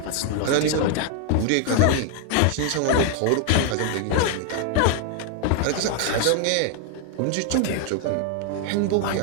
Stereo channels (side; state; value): both; different; correlation 0.00